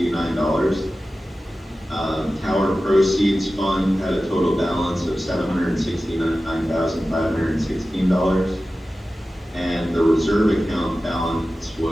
Tower proceeds fund had a total balance of $769,516. And the reserve account balance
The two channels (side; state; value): both; normal; correlation 0.95